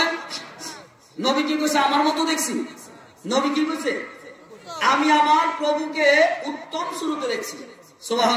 নবী কি কইছে? আমার মতো দেখছি। নবী কি কইছে? আমি আমার প্রভুকে উত্তম সূরতে দেখছি।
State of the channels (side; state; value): both; identical; correlation 1.00